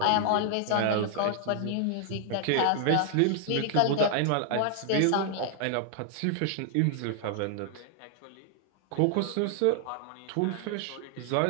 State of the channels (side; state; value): both; different; correlation 0.00